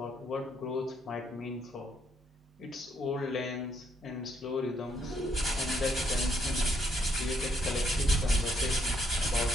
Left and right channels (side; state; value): both; normal; correlation 0.73